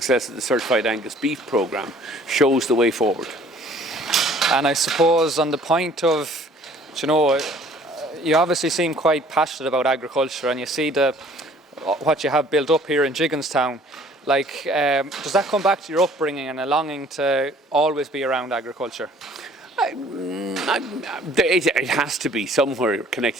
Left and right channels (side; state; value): both; normal; correlation 0.55